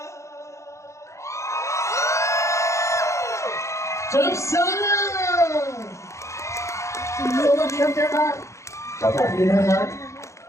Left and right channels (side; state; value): right; late; 0.14 ms